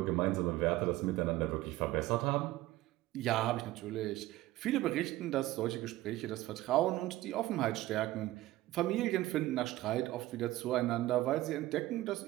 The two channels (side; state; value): left; quieter; 16.7 dB